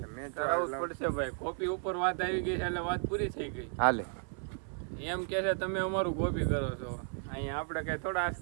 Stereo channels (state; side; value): silent; left; 55 dB below the other